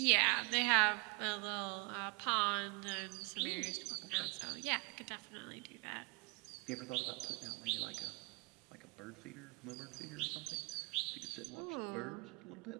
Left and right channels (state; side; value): quieter; left; 29.4 dB